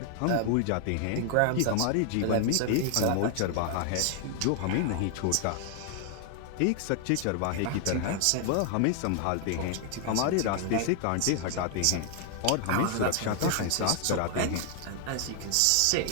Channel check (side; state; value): both; different; correlation 0.00